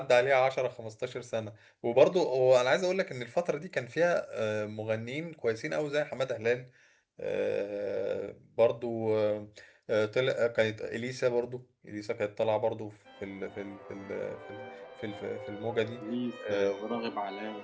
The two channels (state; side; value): identical; both; correlation 1.00